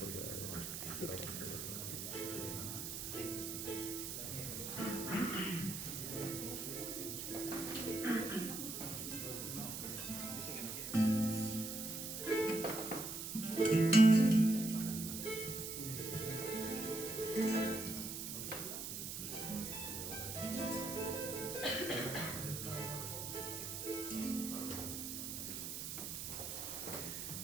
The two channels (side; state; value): right; noise; hiss, 5 dB below the sound